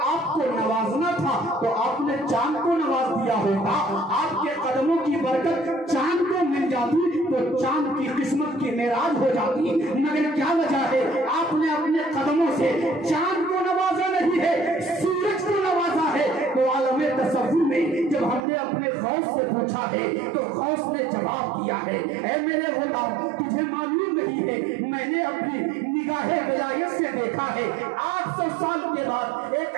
آپ کو نوازنا تھا تو آپ نے چاند کو نواز دیا ہوتا، آپ کے قدموں کی برکت چاند کو مل جاتی تو چاند کی قسمت کی معراج ہو جاتی، مگر کیا وجہ ہے آپ نے اپنے قدموں سے چاند کو نوازا نہیں ہے، سورج کو نوازا ہے۔ تو عالم تصور میں جب ہم نے اپنے غوث سے پوچھا ہے تو غوث نے جواب دیا ہے، اے میرے غلام تجھے معلوم نہیں ہے، میں نے اپنی نگاہ ولایت سے دیکھا ہے 800 سال کے بعد ایک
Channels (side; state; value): left; drops out; at 18.4 s